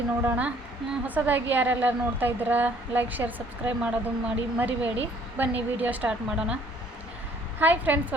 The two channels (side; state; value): both; normal; correlation 0.60